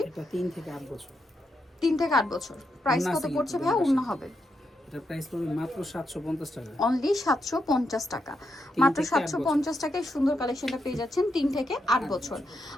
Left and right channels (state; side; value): normal; both; correlation 0.82